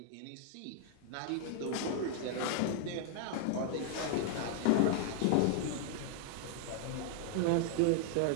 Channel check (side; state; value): both; different; correlation -0.01